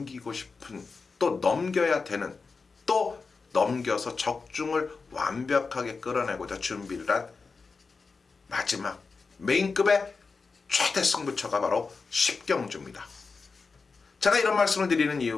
싶은 또 넘겨야 되는 또 넘겨서 적중을 완벽하게 끌어내고자 준비를 한 마지막 메인급의 최대 승부처가 바로 10경주입니다. 제가 이런 말씀을 드리는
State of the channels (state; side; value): quieter; right; 4.5 dB